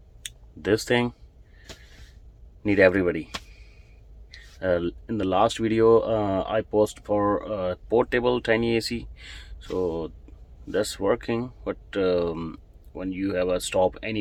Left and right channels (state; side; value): identical; both; correlation 1.00